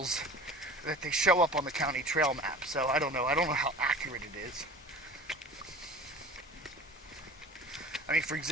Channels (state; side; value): normal; both; correlation 0.41